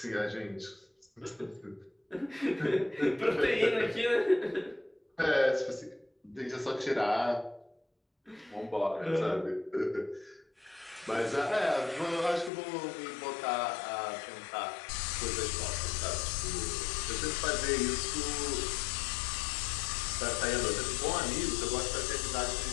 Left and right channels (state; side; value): drops out; right; at 12.5 s